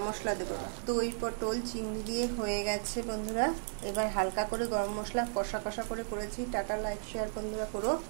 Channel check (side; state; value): left; silent; digital silence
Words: মশলা দেবো। দই পটল চিংড়ি দিয়ে হয়ে গেছে বন্ধুরা। এবার হালকা করে গরম মশলা কষা কষা করে করেছি। টাটা, লাইক শেয়ার বন্ধুরা করো।